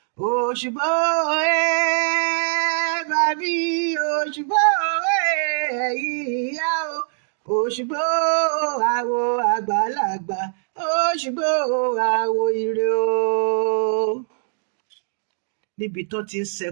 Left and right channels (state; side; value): silent; left; digital silence